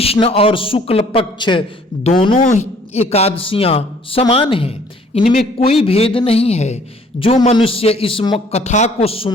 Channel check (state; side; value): normal; both; correlation 0.58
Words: और शुक्ल पक्ष दोनों एकादशियां समान हैं, इनमें कोई भेद नहीं है। जो मनुष्य इस कथा को